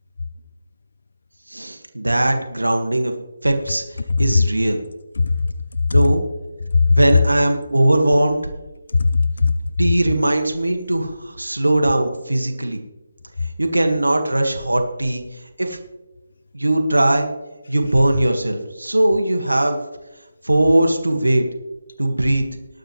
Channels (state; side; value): inverted; both; correlation -0.94